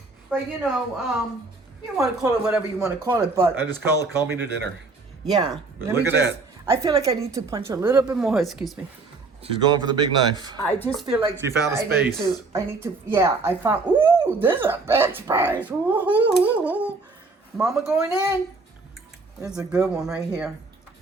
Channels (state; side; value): quieter; left; 3.8 dB